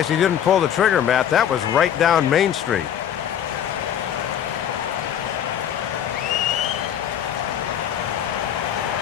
he didn't pull the trigger, Matt. That was right down Main Street.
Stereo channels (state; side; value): quieter; right; 9.7 dB